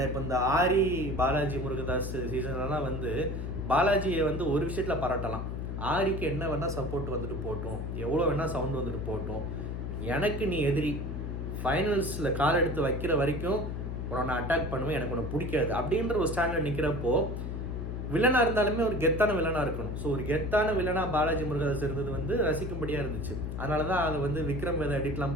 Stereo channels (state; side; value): noise; left; hum, 4 dB below the sound